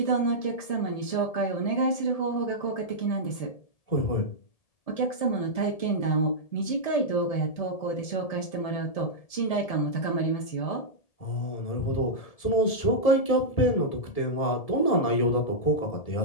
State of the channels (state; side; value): late; right; 1.7 ms